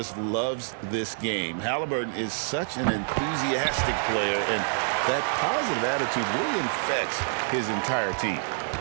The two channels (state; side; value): silent; left; 60 dB below the other